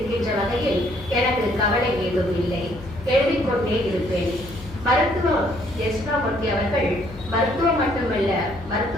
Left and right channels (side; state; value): left; noise; hum, 16 dB below the sound